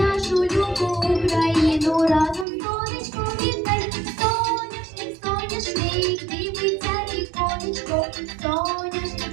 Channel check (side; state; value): left; drops out; at 2.5 s